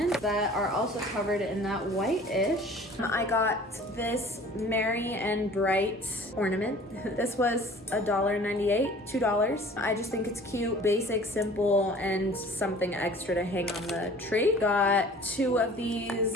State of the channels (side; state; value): both; normal; correlation 0.47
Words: that are also covered in that whitish. I got this Merry and Bright ornament. This was $1.98, $2. I just think it's cute, basic, simple, and something extra to hang on the tree. Got 2 of these